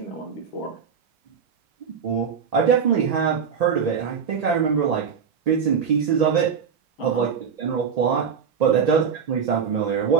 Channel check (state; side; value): quieter; left; 6.7 dB